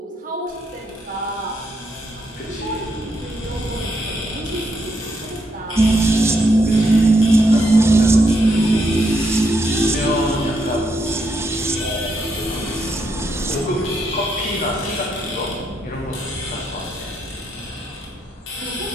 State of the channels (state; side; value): normal; both; correlation 0.78